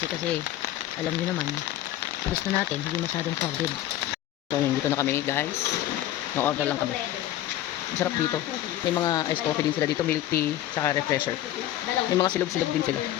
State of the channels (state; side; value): quieter; right; 13.3 dB